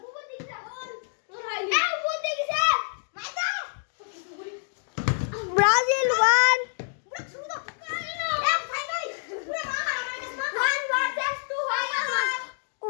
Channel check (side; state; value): right; silent; digital silence